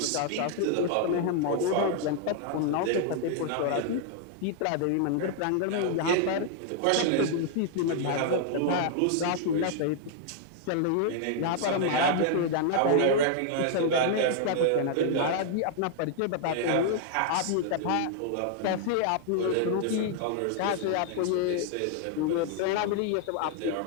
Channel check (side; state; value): both; different; correlation 0.00